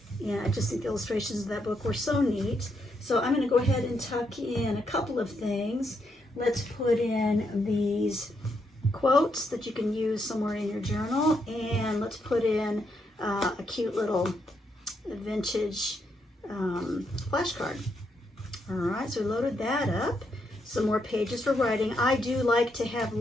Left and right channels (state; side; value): normal; both; correlation 0.78